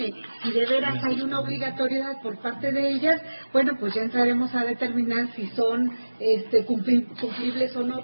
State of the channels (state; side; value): inverted; both; correlation -1.00